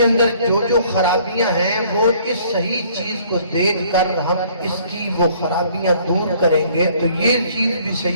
اندر جو خرابیاں ہیں وہ اس صحیح چیز کو دیکھ کر ہم اس کی وہ خرابیاں دور کریں گے تو یہ چیز بھی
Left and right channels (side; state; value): both; inverted; correlation -0.58